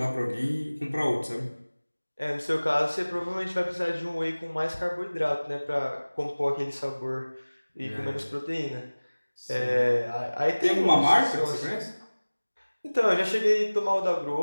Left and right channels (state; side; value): inverted; both; correlation -1.00